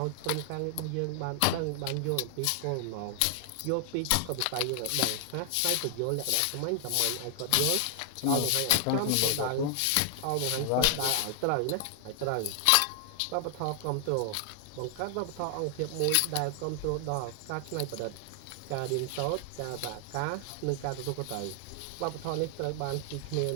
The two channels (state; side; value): different; both; correlation 0.00